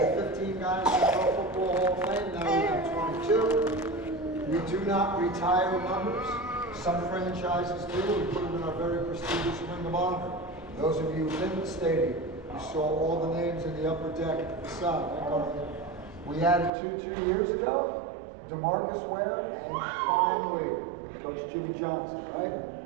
15 guys in the Pro Football Hall of Fame. Now we have 22. We do not retire numbers. Some franchises do. We put them in our very prestigious Ring of Honor. Those of you in the stadium, you saw all the names in the upper deck at the side. We added two years ago, DeMarcus Ware, and finally, Coach Jimmy Johnson, right?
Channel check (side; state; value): left; drops out; at 16.7 s